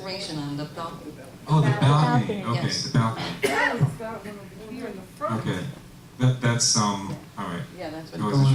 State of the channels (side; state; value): both; identical; correlation 1.00